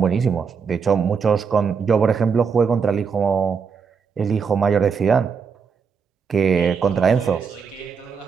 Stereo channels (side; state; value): left; quieter; 6.0 dB